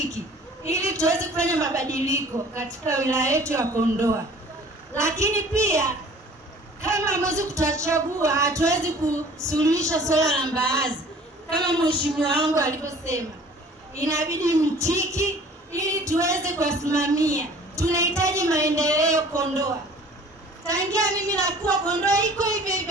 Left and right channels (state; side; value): normal; both; correlation 0.49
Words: ili tuweze kufanya mabadiliko katika wilaya yetu ya Kondoa. Lakini pia kama mwezi kutachagua, hatuwezi kusuluhisha swala la mbaazi kama mheshimiwa wangu alivyosema. Inabidi mtiki ili tuweze kusimamia. Tunahitaji maendeleo Kondoa. Tangia mimi nakuwa Kondoa iko hivi